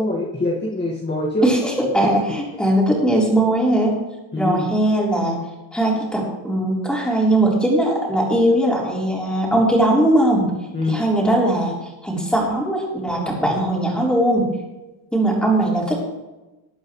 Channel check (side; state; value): both; normal; correlation 0.56